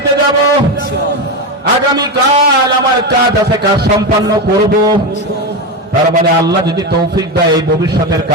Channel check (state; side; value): normal; both; correlation 0.15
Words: যাব, আগামীকাল আমার কাজ আছে, কাজ সম্পন্ন করব। তার মানে আল্লাহ যদি তৌফিক দেয়, এই ভবিষ্যতের